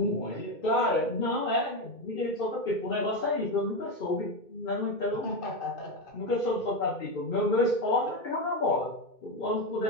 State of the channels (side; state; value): right; late; 2.3 ms